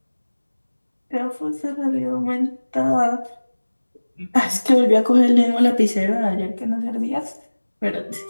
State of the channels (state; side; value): inverted; both; correlation -1.00